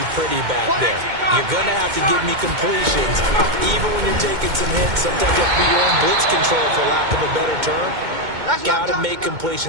pretty back there. You're going to have to give me completions. Even when you're taking some hits, sometimes you have to be your own blitz control, for lack of a better term. Got to make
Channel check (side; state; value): left; late; 2.2 ms